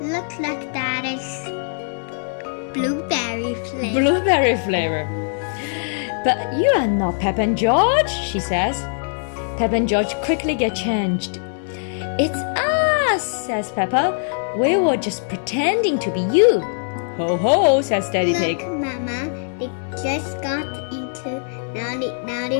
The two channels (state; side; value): silent; right; digital silence